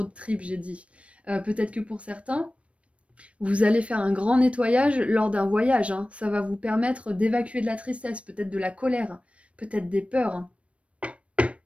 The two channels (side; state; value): left; late; 0.062 ms